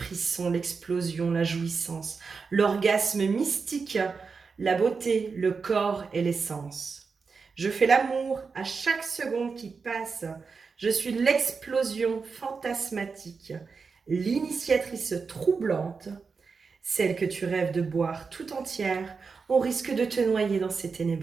l'explosion, la jouissance, l'orgasme mystique, la beauté, le corps et l'essence. Je fais l'amour à chaque seconde qui passe. Je suis l'explosion fantasmatique, l'initiatrice troublante, celle que tu rêves de boire tout entière au risque de te noyer dans ces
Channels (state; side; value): quieter; left; 5.0 dB